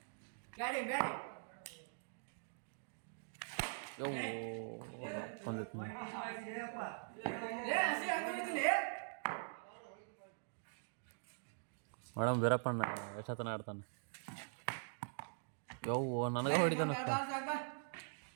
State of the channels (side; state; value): left; silent; digital silence